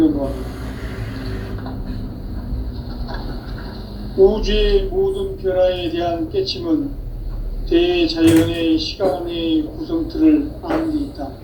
우주의 모든 변화에 대한 깨침은 대자연의 시간의 구성틀을 아는 데 있다.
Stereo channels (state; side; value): identical; both; correlation 1.00